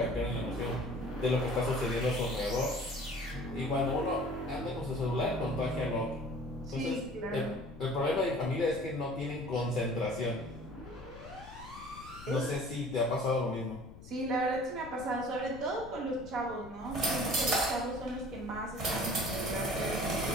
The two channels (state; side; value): noise; left; rumble, 16 dB below the sound